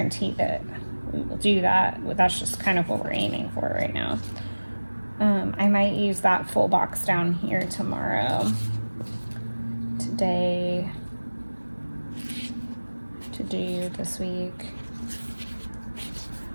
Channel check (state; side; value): inverted; both; correlation -1.00